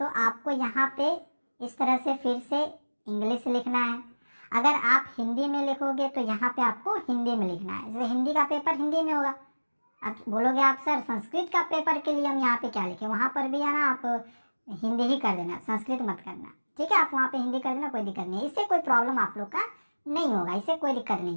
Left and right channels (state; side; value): inverted; both; correlation -1.00